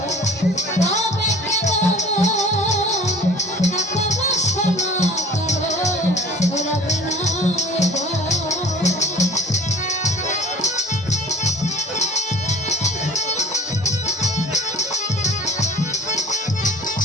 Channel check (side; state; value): both; normal; correlation 0.47